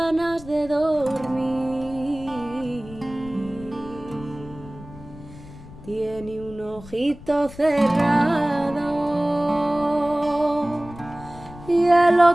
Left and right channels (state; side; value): noise; left; rumble, 17 dB below the sound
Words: de dormir, tiene un ojito cerrado y el